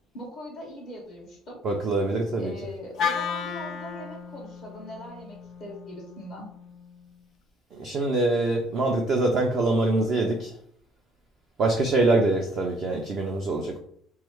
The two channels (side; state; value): both; normal; correlation 0.63